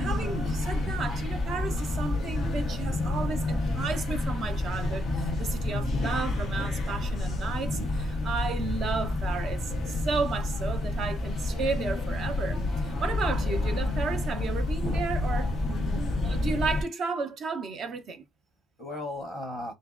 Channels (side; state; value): both; normal; correlation 0.78